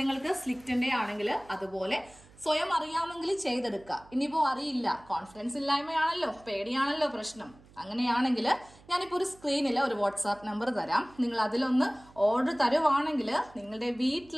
നിങ്ങൾക്ക് സ്ലിറ്റിന്റെ ആണെങ്കിൽ അതുപോലെ സ്വയം അറിയാമെങ്കിൽ ചെയ്തെടുക്കുക. ഇനിയിപ്പോ അറിയില്ല, കോൺഫിഡൻസ് ഇല്ലായ്മയാണല്ലോ, പേടിയാണല്ലോ പ്രശ്നം, അങ്ങനെയാണെങ്കിൽ ഞാനിപ്പോൾ ഒരു സ്ക്രീനിൽ ഒരു വാട്സാപ്പ് നമ്പർ തരാം. നിങ്ങൾ അതിലൊന്ന് ഓർഡർ തരുവാണെങ്കിൽ നിങ്ങളുടെ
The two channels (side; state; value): right; noise; hum, 25 dB below the sound